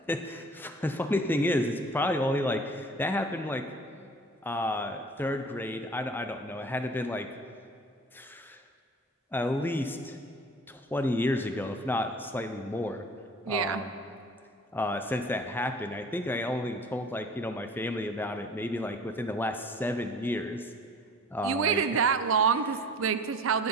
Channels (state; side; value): normal; both; correlation 0.46